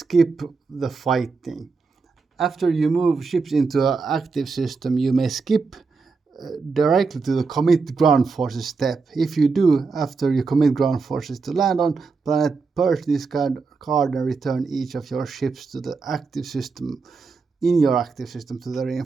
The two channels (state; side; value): quieter; left; 4.6 dB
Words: the fighting. After you move ships into an active system, you may skip directly to the commit ground forces step. If you do, after you commit ground forces to land on planet, purge this card and return each of your ships to the active system, in your active system, to the